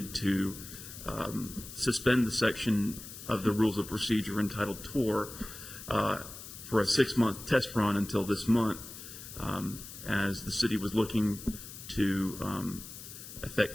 to suspend the section of the Rules of Procedure entitled Tour for a 6-month test run until this month, as the city was looking to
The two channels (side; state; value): left; noise; hiss, 13 dB below the sound